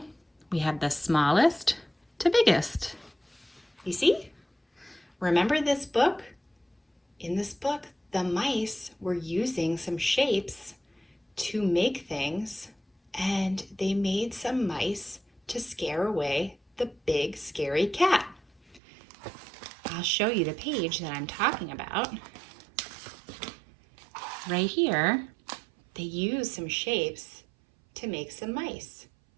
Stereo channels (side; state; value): left; drops out; at 18.8 s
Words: we have the smallest to biggest. You see? Remember this book? In this book, the mice were using some shapes to make things, and they made some mice to scare away the big, scary cat. I'll show you the page that I'm talking about. Right here, they use some shapes to make some mice